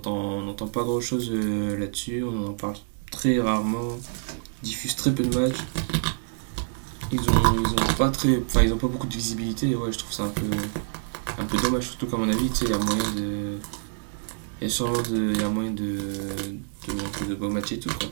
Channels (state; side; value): silent; left; digital silence